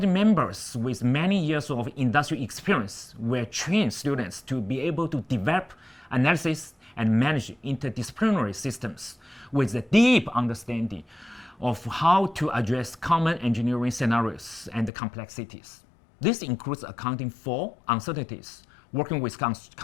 members with many years of industry experience will train students to be able to develop, analysis, and manage interdisciplinary systems with a deep understanding of how to address common engineering scenarios and complexities. This includes accounting for uncertainties, working with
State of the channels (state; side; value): drops out; right; at 14.9 s